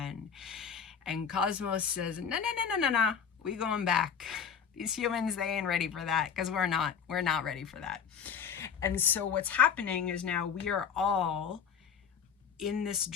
And Cosmos says, no, we going back. These humans, they ain't ready for that, because we're not ready for that. And so what's happening is now we are all in this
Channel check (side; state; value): right; quieter; 7.1 dB